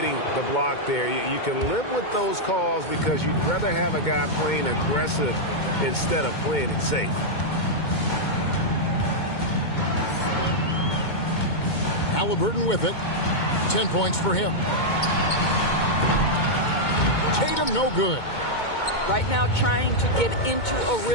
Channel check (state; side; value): late; right; 2.2 ms